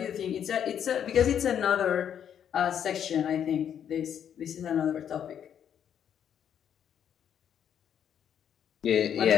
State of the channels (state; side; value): quieter; right; 8.9 dB